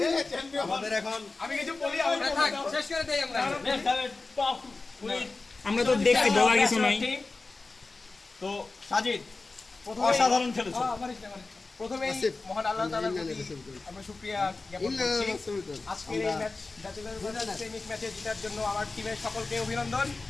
আমরা তো দেখছি, বলার কিছু নাই। তো সাজিদ, অসাধারণ খেলেছো। প্রথমেই মহান আল্লাহ তাআলার প্রতি আমরা শুকরিয়া জ্ঞাপন করছি। আজকের এই ম্যাচ ব্যাচেলর প্রেমিক ম্যাচে জেতার জন্য আমার টিমের সকলকে অভিনন্দন।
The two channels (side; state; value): right; quieter; 3.6 dB